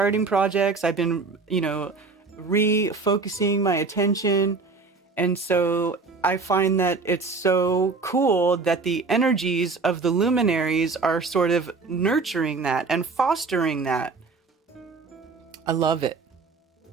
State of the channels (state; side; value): quieter; left; 4.2 dB